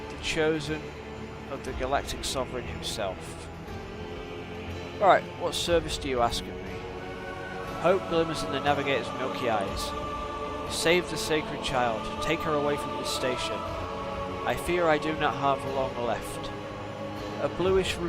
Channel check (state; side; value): identical; both; correlation 1.00